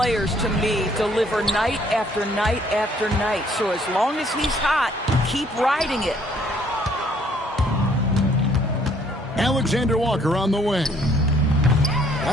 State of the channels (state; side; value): normal; both; correlation 0.63